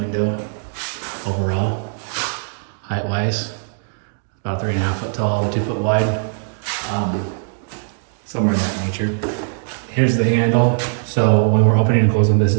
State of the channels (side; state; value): left; silent; digital silence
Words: overall, height-wise. About 3.5 foot tall, 2 foot wide, somewhere in that nature. Here's the handle. So when we're opening and closing, this